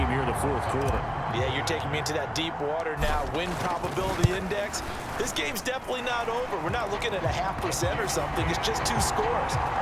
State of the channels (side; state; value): both; identical; correlation 1.00